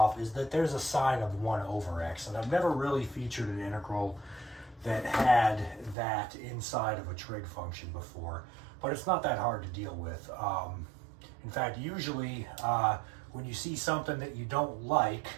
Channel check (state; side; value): drops out; left; at 6.0 s